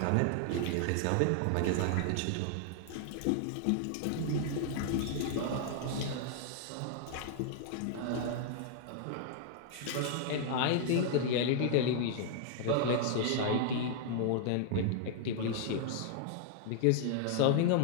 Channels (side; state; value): both; different; correlation 0.00